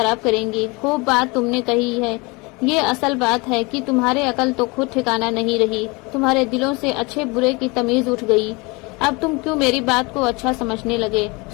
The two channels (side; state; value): right; quieter; 26.6 dB